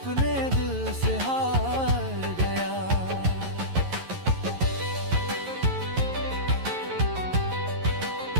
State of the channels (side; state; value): left; late; 11 ms